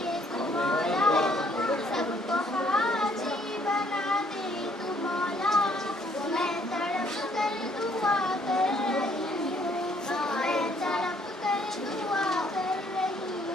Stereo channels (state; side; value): normal; both; correlation 0.65